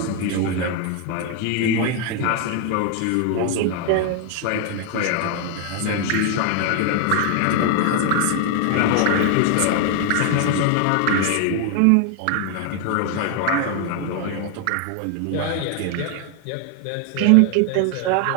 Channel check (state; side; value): different; both; correlation 0.01